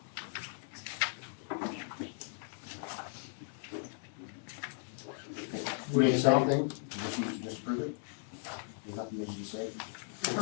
We need something? Just approve it? There's nothing needs to be said?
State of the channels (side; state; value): right; silent; 53 dB below the other